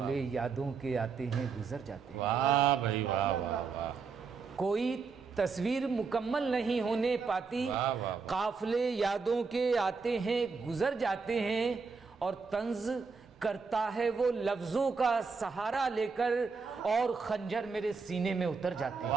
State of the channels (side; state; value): left; quieter; 5.0 dB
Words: यादों के आते हैं गुजर जाते हैं। वाह भाई वाह वाह वाह। कोई तस्वीर मुकम्मल नहीं होने पाती, काफ़िले यादों के आते हैं गुजर जाते हैं। और तंज करता है वो लफ्ज़ों का सहारा लेकर, और खंजर मेरे सीने में उतर जाते हैं।